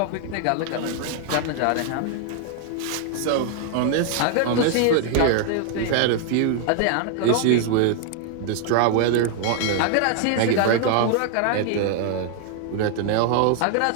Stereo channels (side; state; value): both; different; correlation 0.00